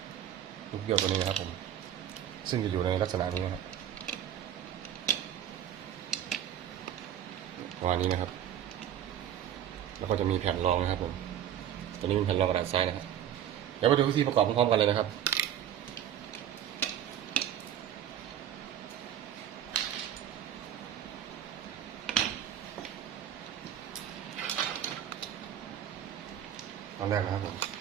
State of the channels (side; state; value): left; quieter; 10.4 dB